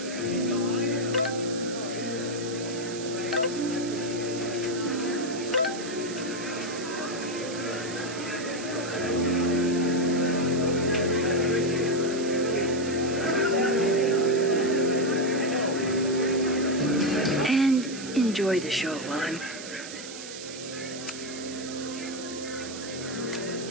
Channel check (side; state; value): right; noise; hiss, 11 dB below the sound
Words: Enjoy the show while I'm...